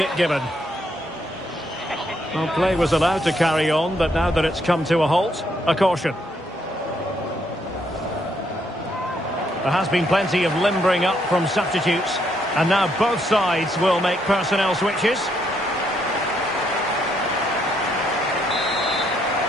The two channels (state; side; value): normal; both; correlation 0.74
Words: given. Well, play was allowed to carry on, but now that it's come to a halt, a caution. There has been plenty of limbering up from substitutes. And now both sides will make personnel switches.